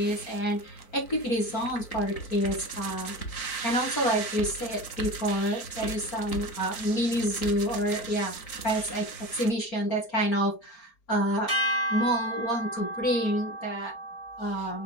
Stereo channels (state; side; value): late; right; 4.4 ms